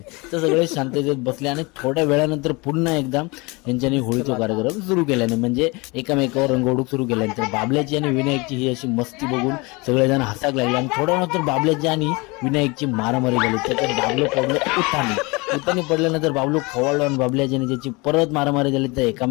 तर सगळे शांततेत बसले आणि थोड्या वेळानंतर पुन्हा एकदा यांच्यानी होळीचा कार्यक्रम सुरू केल्याने म्हणजे एकामेकावर रंग उडवून सुरू केल्यानंतर बाबल्याची आणि विनायकची ही अशी मस्ती बघून सगळेजण हसाक लागले आणि थोड्या नंतर बाबल्याची आणि विनायकची मारामारी झाली। त्याच्यात बाबलो पडलो उतानी पडल्यानंतर बाबलो खवळलो आणि बाबल्याची ज्याची परत मारामारी झाली तर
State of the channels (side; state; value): right; quieter; 26.2 dB